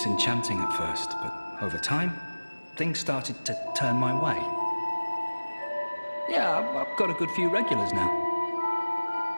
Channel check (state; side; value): inverted; both; correlation -1.00